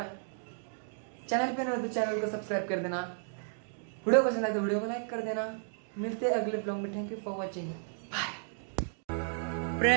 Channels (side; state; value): left; silent; digital silence